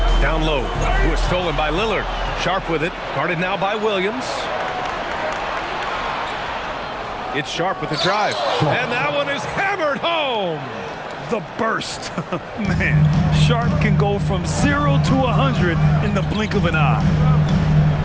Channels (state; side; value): identical; both; correlation 1.00